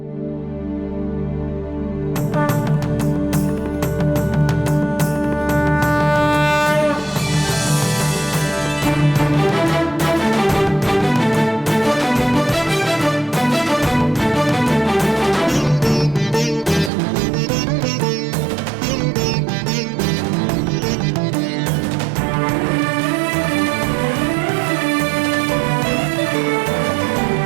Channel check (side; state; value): left; drops out; at 16.9 s